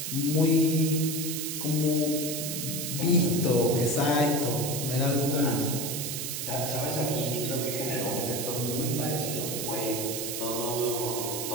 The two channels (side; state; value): right; noise; hiss, 3 dB below the sound